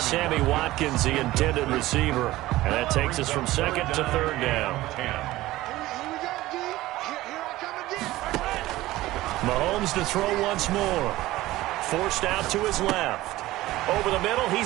Watkins, the intended receiver. And that takes us from 2nd to 3rd down. Mahomes to throw once more. Forced out to his left. Over the middle,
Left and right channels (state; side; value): quieter; left; 17.0 dB